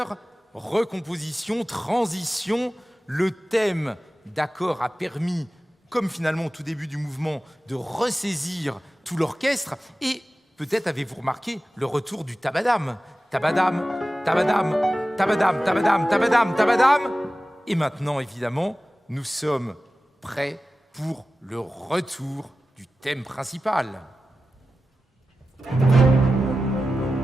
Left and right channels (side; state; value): both; normal; correlation 0.94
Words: recomposition, transition, le thème d'accord a permis, comme finalement au tout début du mouvement, de ressaisir tout l'orchestre. Et peut-être avez-vous remarqué le retour du tabadam. Tabadam, tabadam, tabadam, tabadam, tabadam, tabadam. Et maintenant, évidemment, nous sommes prêts pour le retour du thème principal.